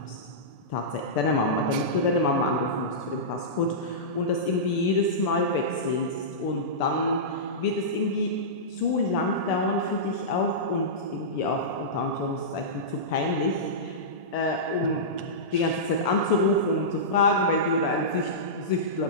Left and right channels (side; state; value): right; late; 1.7 ms